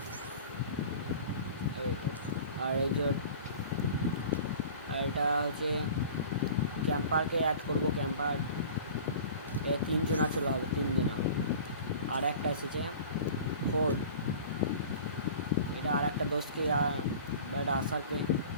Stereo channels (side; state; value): both; inverted; correlation -0.41